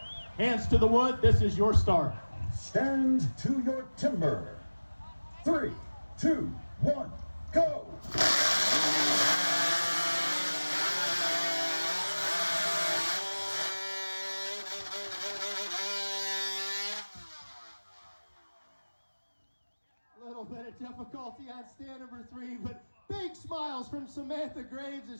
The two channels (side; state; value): both; inverted; correlation -1.00